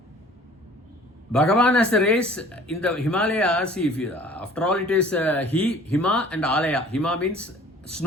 Bhagavan has the rays in the Himalayas. After all, it is Hima and Alaya. Hima means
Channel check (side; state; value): both; normal; correlation 0.50